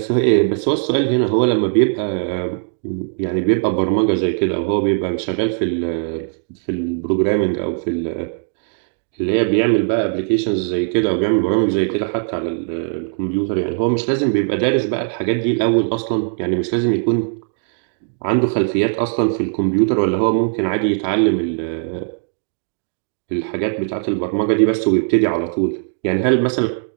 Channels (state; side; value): silent; left; digital silence